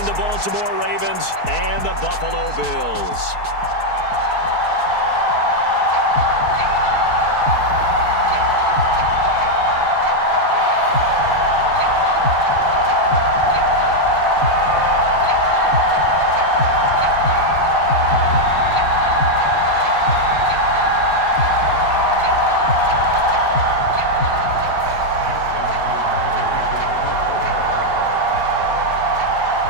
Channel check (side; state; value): right; late; 4.6 ms